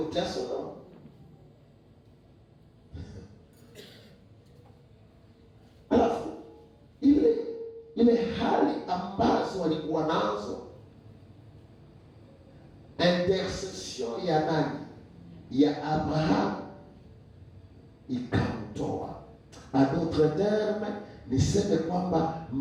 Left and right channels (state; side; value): identical; both; correlation 1.00